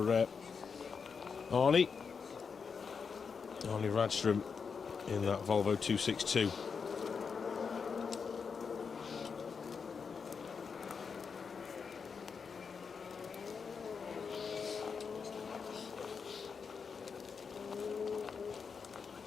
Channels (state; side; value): quieter; right; 5.7 dB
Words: Arnie. Arnie Radstrom in that Volvo 262.